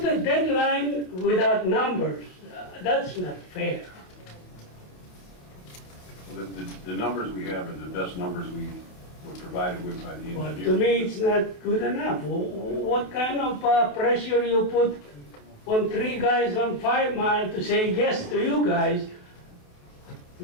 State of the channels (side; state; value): right; late; 28 ms